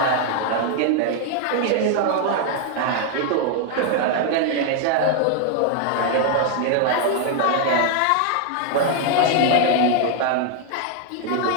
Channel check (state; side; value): different; both; correlation 0.00